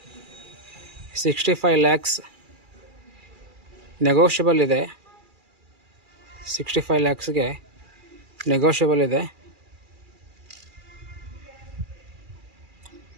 65 lakhs ನೆಗೋಷಿಯಬಲ್ ಇದೆ. 65 lakhsಗೆ ನೆಗೋಷಿಯಬಲ್ ಇದೆ.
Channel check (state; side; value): late; left; 2.4 ms